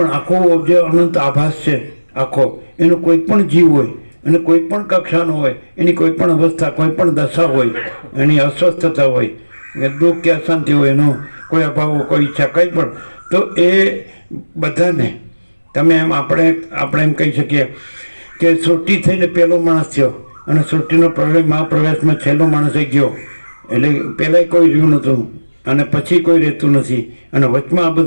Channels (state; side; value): inverted; both; correlation -1.00